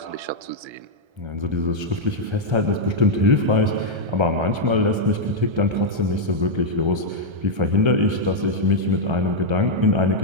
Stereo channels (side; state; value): left; late; 1.3 ms